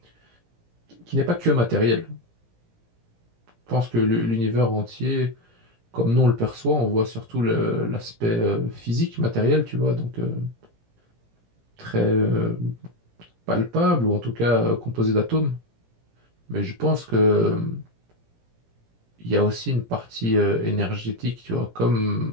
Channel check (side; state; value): left; late; 17 ms